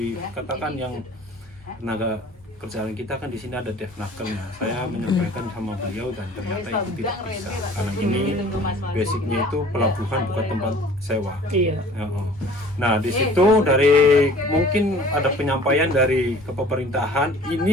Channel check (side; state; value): both; normal; correlation 0.48